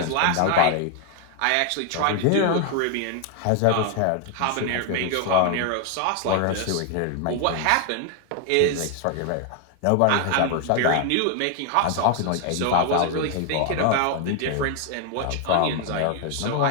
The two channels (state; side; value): different; both; correlation 0.00